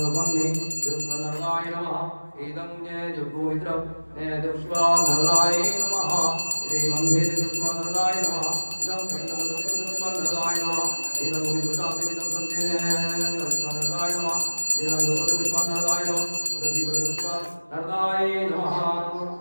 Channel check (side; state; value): both; inverted; correlation -1.00